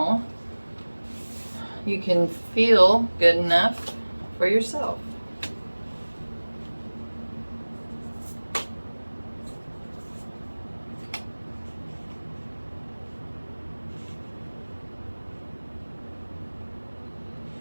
you can feel good enough for yourself.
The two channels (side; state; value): both; inverted; correlation -1.00